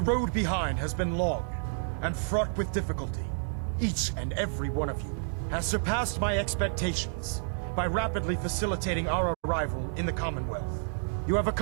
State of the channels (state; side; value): silent; left; digital silence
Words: road behind has been long and fraught with difficulty. Each and every one of you has surpassed my expectations by rapidly facilitating our arrival in the Commonwealth. You have